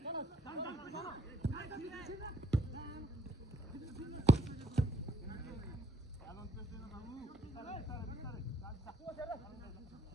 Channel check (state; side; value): normal; both; correlation 0.66